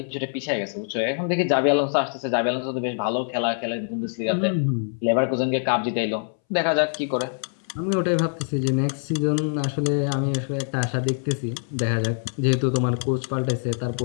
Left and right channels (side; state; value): right; silent; 62 dB below the other